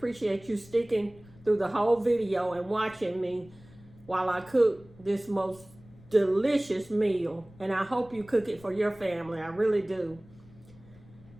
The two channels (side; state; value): left; noise; rumble, 23 dB below the sound